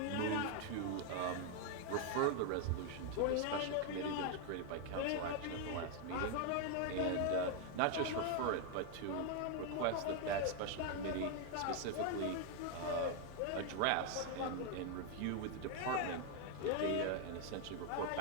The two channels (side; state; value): both; different; correlation 0.01